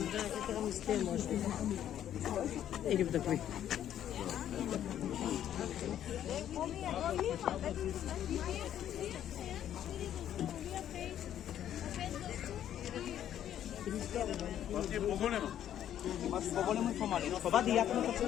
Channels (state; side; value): quieter; right; 10.8 dB